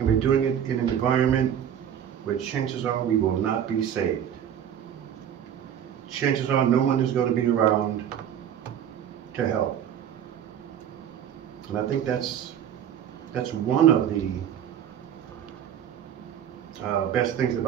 we're doing it in an environment where chances are we will not be saved. Chances are no one is going to be around to help. And I think that's one of the best things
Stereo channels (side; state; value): left; quieter; 9.4 dB